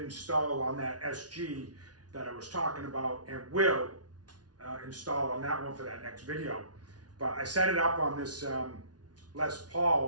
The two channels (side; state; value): left; late; 0.69 ms